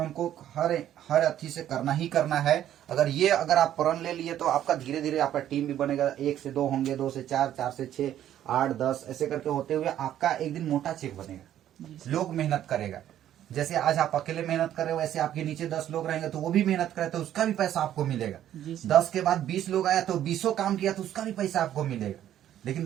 हर अथी से करना ही करना है, अगर आप प्रण ले लिए, तो आपका धीरे धीरे आपका टीम भी बनेगा। 1 से 2 होंगे, 2 से 4, 4 से 6, 8, 10 ऐसे करके होते हुए आपका एक दिन मोटा चेक बनेगा। लोग मेहनत करेगा, जैसे आज आप अकेले मेहनत कर रहे हो, वैसे आपके नीचे 10 लोग रहेंगे तो वो भी मेहनत करे, तो उसका भी पैसा आपको मिलेगा। 10 के बाद 20 लोग आया तो 20 काम किया तो उसका भी पैसा आपको मिलेगा। लेकिन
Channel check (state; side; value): quieter; left; 11.4 dB